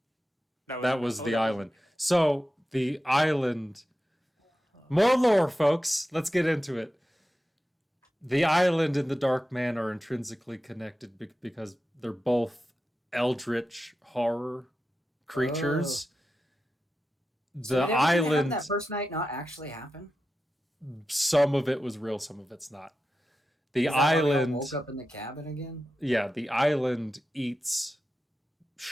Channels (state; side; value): normal; both; correlation 0.91